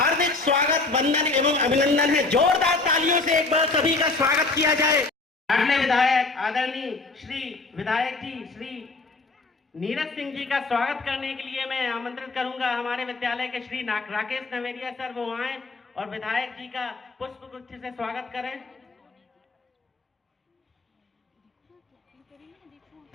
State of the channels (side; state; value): right; quieter; 3.6 dB